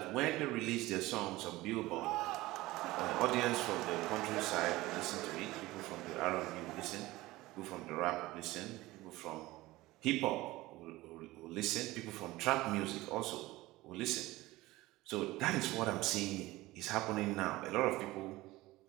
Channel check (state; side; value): quieter; left; 18.8 dB